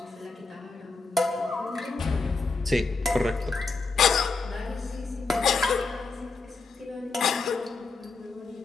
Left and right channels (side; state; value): right; quieter; 4.1 dB